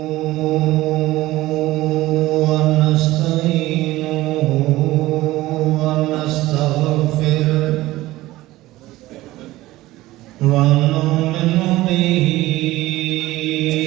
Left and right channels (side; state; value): left; quieter; 17.4 dB